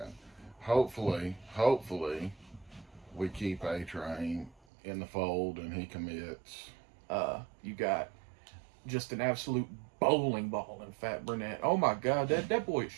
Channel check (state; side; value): drops out; left; at 4.6 s